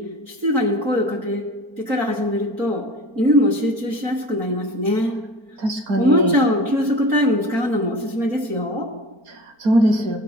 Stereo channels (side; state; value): left; late; 4.4 ms